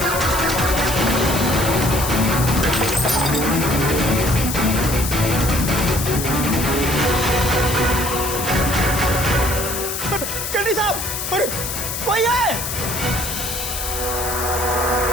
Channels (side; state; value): left; noise; hiss, 4 dB below the sound